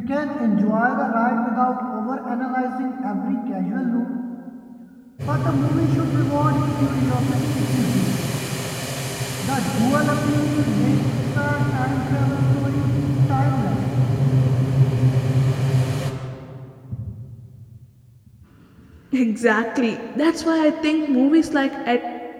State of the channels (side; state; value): both; identical; correlation 1.00